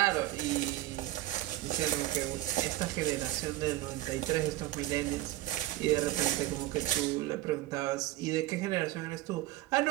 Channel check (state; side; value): quieter; left; 16.0 dB